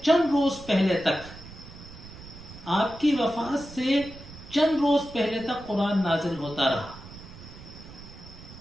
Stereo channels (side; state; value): right; noise; rumble, 16 dB below the sound